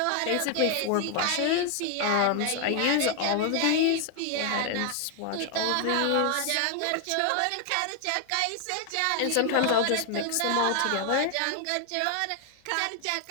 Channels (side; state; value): both; different; correlation 0.00